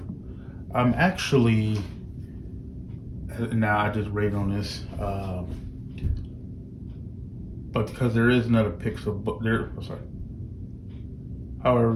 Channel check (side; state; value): both; identical; correlation 1.00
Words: I'm actually now I just rate on this, but because there is another Pixelbook there. Oh, sorry. However,